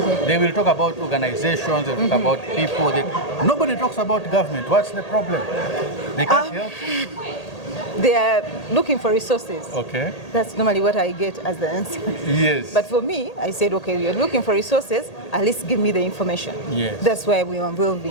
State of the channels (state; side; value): late; right; 1.8 ms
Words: they will talk about organizations, they will talk about people. Nobody talks about government. What's the problem? They can't help? They are looking for resources. Okay. That's normally what I get as the answer. Yes. But for me, I said, okay, you're looking for resources, at least give me the information. Yes. That's why we are